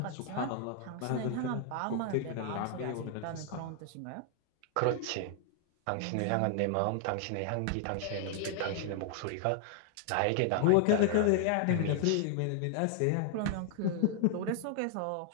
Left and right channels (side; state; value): both; different; correlation 0.00